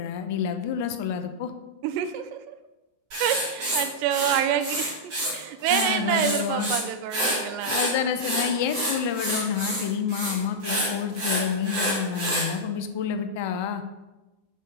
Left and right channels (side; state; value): left; late; 7.7 ms